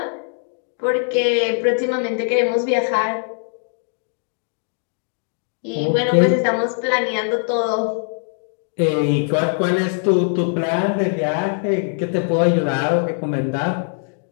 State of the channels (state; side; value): silent; right; 65 dB below the other